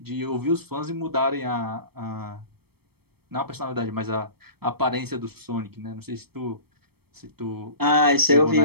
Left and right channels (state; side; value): late; left; 0.96 ms